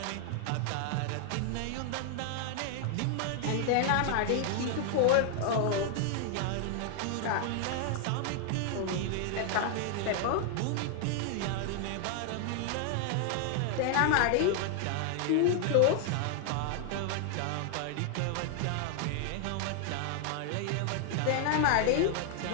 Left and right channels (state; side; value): different; both; correlation 0.00